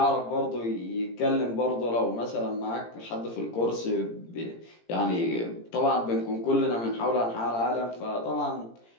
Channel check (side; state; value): right; late; 17 ms